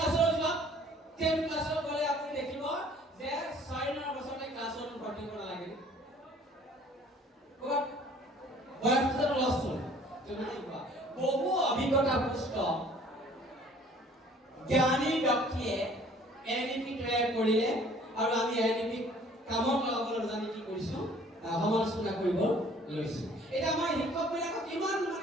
যোৱা 10 ক্লাছৰ গলে আপুনি দেখিব যে 6 বছৰতে ক্লাছৰ ভৰ্তি কৰিব নালাগে ক'ত বয়সটো লছ হ'ল বহু অভিজ্ঞতা পুষ্ট জ্ঞানী ব্যক্তিয়ে এনইপি তৈয়াৰ কৰিলে আৰু আমি এনইপি কামত লগাবলৈ জানি কি কৰিছো সমালোচনা কৰিব লৈছো এটা আমাৰ শিক্ষকবিলাকক কিমান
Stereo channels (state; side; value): normal; both; correlation 0.54